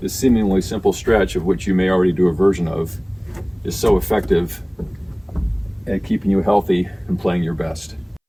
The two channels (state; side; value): identical; both; correlation 1.00